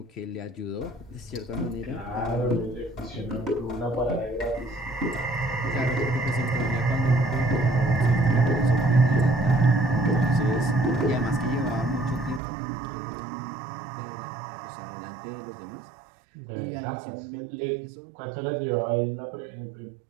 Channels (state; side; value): drops out; left; at 12.4 s